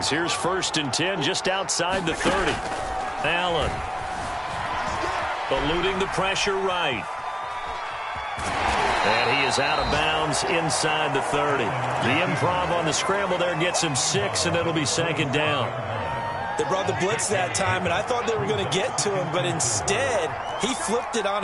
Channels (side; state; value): both; identical; correlation 1.00